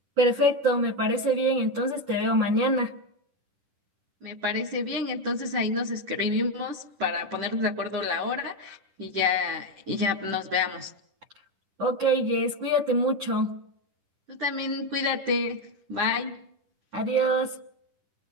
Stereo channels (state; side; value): late; left; 10 ms